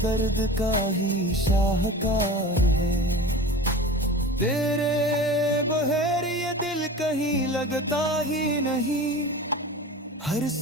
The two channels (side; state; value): both; normal; correlation 0.35